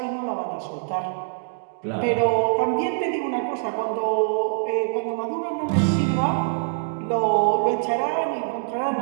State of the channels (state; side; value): silent; left; digital silence